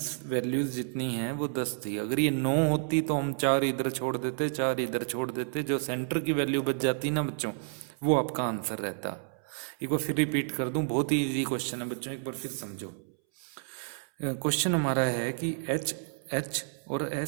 वैल्यूज जितनी हैं वो 10 थी। अगर ये 9 होती तो हम 4 इधर छोड़ देते, 4 इधर छोड़ देते, जो सेंटर की वैल्यू बच जाती ना बच्चों, वो आपका आंसर रहता। एक बार फिर रिपीट कर दूं, बहुत ही इजी क्वेश्चन है बच्चों, एक बार फिर समझो। क्वेश्चन हमारा है कि एच और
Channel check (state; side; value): silent; left; 58 dB below the other